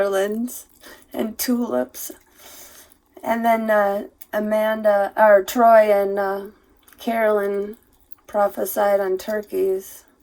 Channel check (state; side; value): identical; both; correlation 1.00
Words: and tulips. And then Troy and Carolyn prophesied on turkeys.